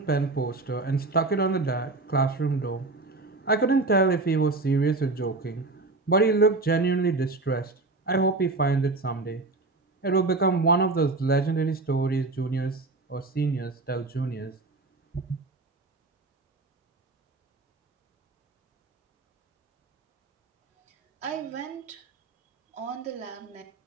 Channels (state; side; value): quieter; left; 3.4 dB